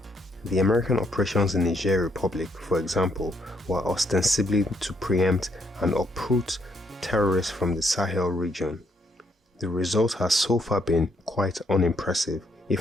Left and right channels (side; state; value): both; normal; correlation 0.73